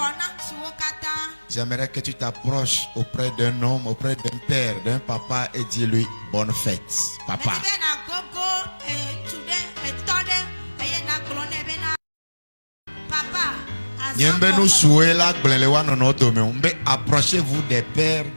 J'aimerais que tu t'approches auprès d'un homme, auprès d'un père, d'un papa et dis-lui bonne fête, papa. Approchez-vous des pères,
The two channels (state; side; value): inverted; both; correlation -1.00